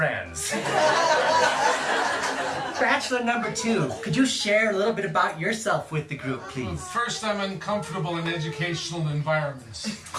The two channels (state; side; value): identical; both; correlation 1.00